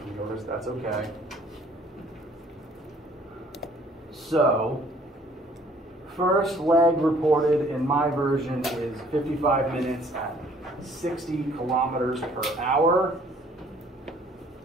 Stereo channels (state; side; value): normal; both; correlation 0.58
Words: yours. That's okay. So, first leg reported in my version is 55 minutes at 60 kilometers per hour.